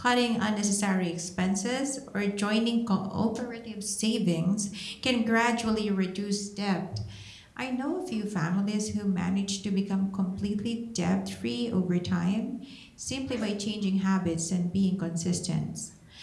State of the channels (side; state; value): both; identical; correlation 1.00